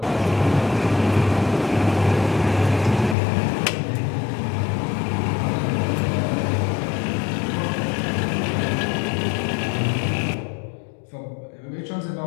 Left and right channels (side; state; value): right; drops out; at 3.2 s